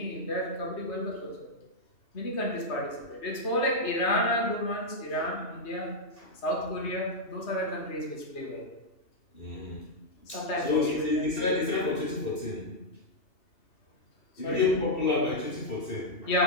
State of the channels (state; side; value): late; right; 2.7 ms